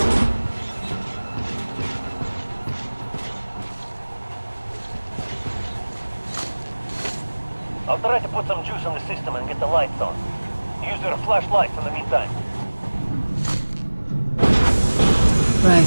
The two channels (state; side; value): inverted; both; correlation -1.00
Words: I'll try to put some juice in the system and get the lights on. Use your flashlights in the meantime.